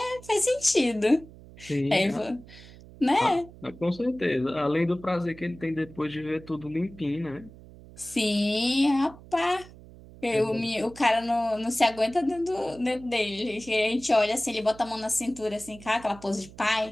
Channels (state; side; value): noise; right; hum, 19 dB below the sound